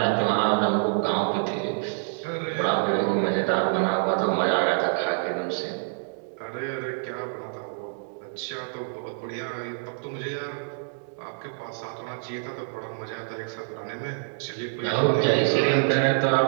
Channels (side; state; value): left; silent; digital silence